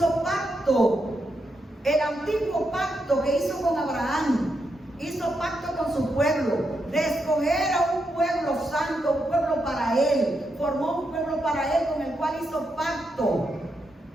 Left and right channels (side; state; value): both; normal; correlation 0.83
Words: pacto, el antiguo pacto que hizo con Abraham, hizo pacto con su pueblo, de escoger a un pueblo santo, un pueblo para él, formó un pueblo para él con el cual hizo pacto